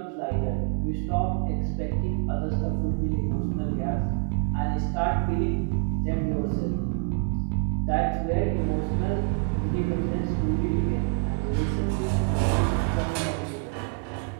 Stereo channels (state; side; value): quieter; left; 38.1 dB